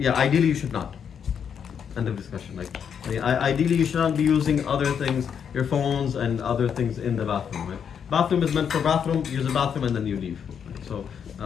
Ideally you should not. End of discussion. Like, ideally you should not be using other things, your phones and other things in the bathroom. Right? Bathroom is meant for bathroom. Use the bathroom and then you leave. Right? So,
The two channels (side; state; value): right; quieter; 7.6 dB